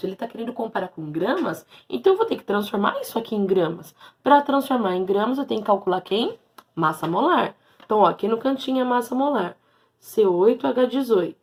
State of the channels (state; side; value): identical; both; correlation 1.00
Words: ele está querendo comparar com gramas, então eu vou ter que transformar isso aqui em gramas. Para transformar em gramas, eu tenho que calcular quem? Massa molar. Então, ó, aqui no cantinho é massa molar.